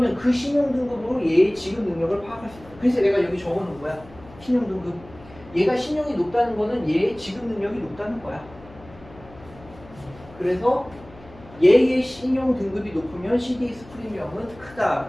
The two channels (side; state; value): left; noise; hum, 21 dB below the sound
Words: 그 신용 등급으로 얘의 지급 능력을 파악할 수 있어. 그래서 내가 여기 적어놓은 거야. 신용 등급. 얘가 신용이 높다는 거는 얘의 지급 능력이 높다는 거야. 그래서 얘의 신용 등급이 높으면 CDS 프리미엄은